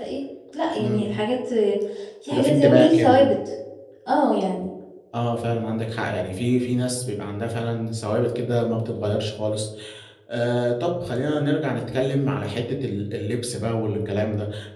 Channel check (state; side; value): identical; both; correlation 1.00